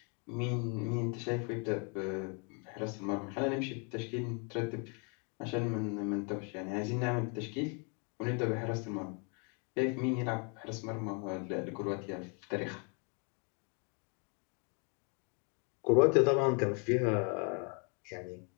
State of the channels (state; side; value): quieter; right; 37.0 dB